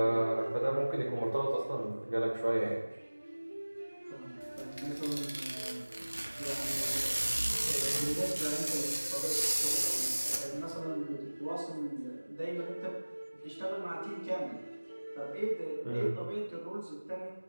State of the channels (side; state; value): both; inverted; correlation -1.00